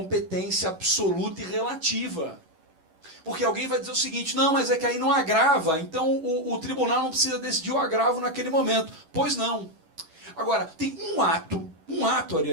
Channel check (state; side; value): late; left; 11 ms